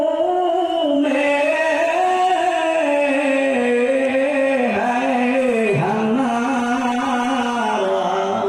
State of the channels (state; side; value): identical; both; correlation 1.00